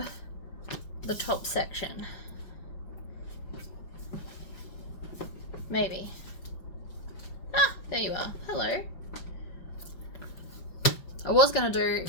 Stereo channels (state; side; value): late; right; 5.5 ms